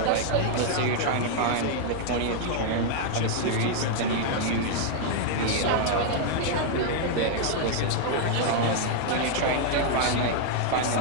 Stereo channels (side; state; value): both; different; correlation 0.00